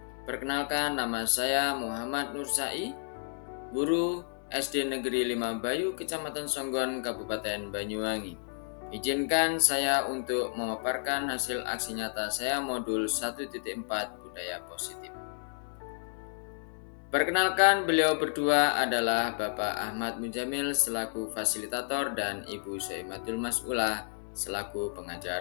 Perkenalkan, nama saya Muhammad Nur Sai, guru SD Negeri 5 Bayu, Kecamatan Songgon, Kabupaten Banyuwangi. Izinkan saya untuk memaparkan hasil aksi nyata saya modul 1.4 Budaya Positif. Perkenalkan, beliau berdua adalah Bapak Ahmad Mujamil selaku fasilitator dan Ibu Soimatul Mas'ulah selaku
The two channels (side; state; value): right; silent; digital silence